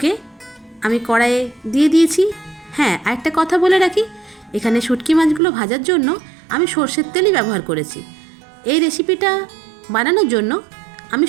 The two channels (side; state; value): left; drops out; at 5.4 s